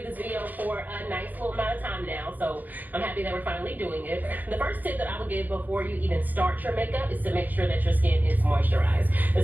do this video for a nice little amount of time now, so I'm happy that we're finally doing it. The first tip that I would give before you even start your makeup is to make sure that your skin is moisturized,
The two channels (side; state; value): left; late; 0.083 ms